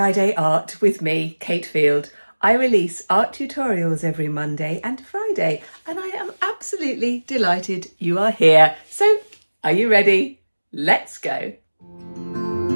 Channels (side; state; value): both; inverted; correlation -1.00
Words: Art with me, Kate Field. I release art tutorials every Monday and Friday, and I am absolutely delighted you are here. So, are you ready? Let's go.